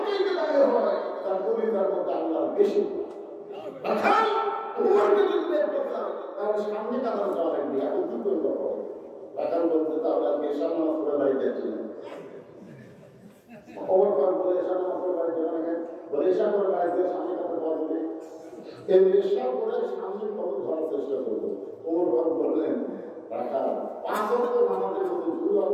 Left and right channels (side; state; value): both; identical; correlation 1.00